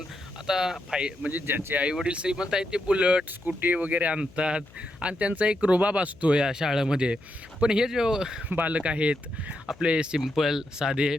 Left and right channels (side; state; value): left; noise; hum, 24 dB below the sound